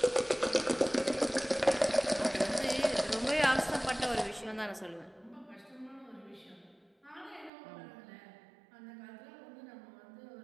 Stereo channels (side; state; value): left; drops out; at 7.5 s